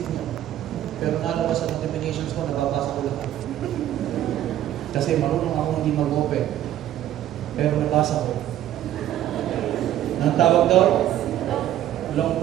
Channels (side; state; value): left; quieter; 12.3 dB